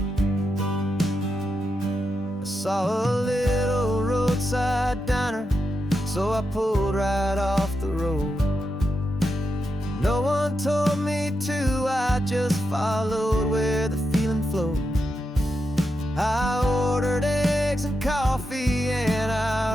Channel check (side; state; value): both; normal; correlation 0.86